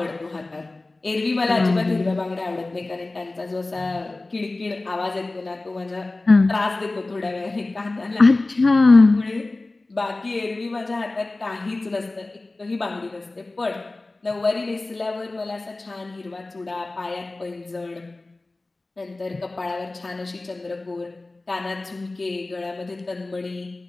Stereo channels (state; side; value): quieter; right; 3.1 dB